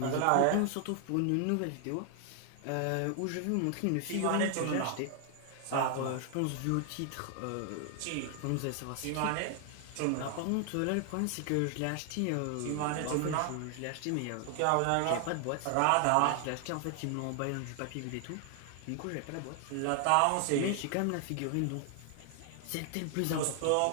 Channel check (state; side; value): different; both; correlation 0.00